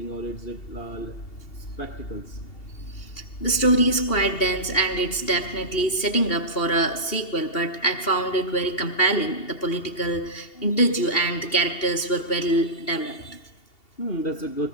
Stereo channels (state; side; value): late; right; 2.8 ms